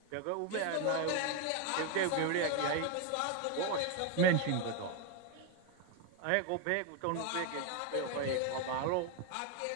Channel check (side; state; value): both; different; correlation 0.01